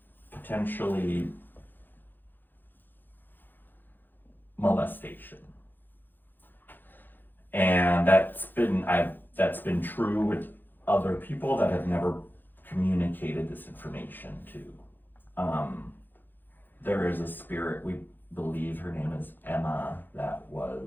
potentially molestation. And that's been true with other people that have never communicated this information to. There is a spirit, we believe her name is Emma, that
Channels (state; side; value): late; right; 0.091 ms